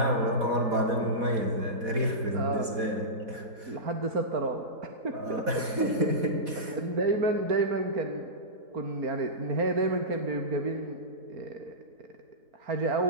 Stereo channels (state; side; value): late; left; 4.1 ms